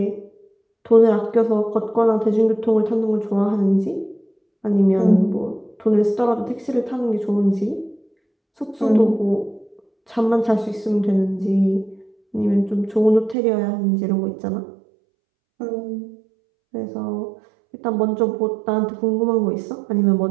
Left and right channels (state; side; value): drops out; left; at 13.4 s